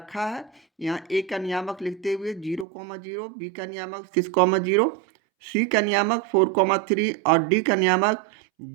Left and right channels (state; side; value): drops out; left; at 2.7 s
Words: है। यहाँ A का नियामक लिखते हुए 0,0, B का नियामक 6,0, C का नियामक 4,3 और D का नियामक